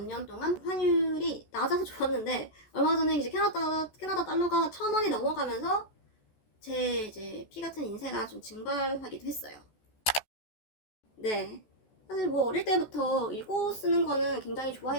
년 동안 환율이 낮아서 좋았는데, 얼마 전에 이제 캐나다 달러가 1,000원이 넘어가면서 제 이제 피 같은 인세가 좀 증발하기도 했어요. 네. 사실 뭐 어릴 때부터 읽고 쓰는 거는 굉장히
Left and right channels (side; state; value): right; late; 14 ms